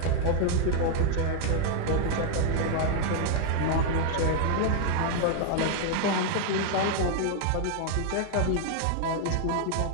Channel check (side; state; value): both; different; correlation 0.00